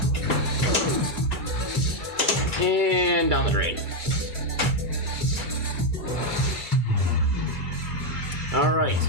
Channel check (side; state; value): left; late; 2.3 ms